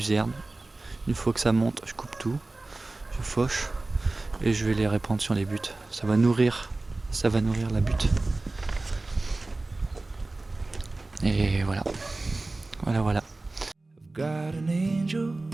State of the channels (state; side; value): quieter; left; 3.1 dB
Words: Une fois que ça monte, je coupe tout, je fauche et je vais les répandre sur les buttes. Ça va nourrir la butte. Et voilà. Voilà. Got an angel.